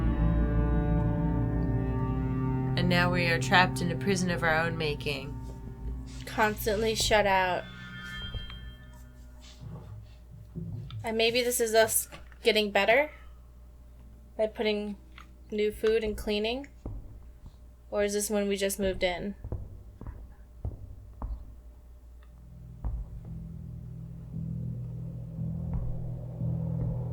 And now we are trapped in a prison of our own making. Constantly shut out. And maybe this is us getting better by putting new food and cleaning. Or is this when we just moved in?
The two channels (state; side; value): identical; both; correlation 1.00